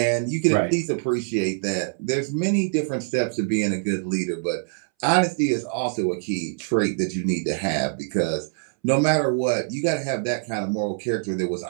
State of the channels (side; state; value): left; silent; 62 dB below the other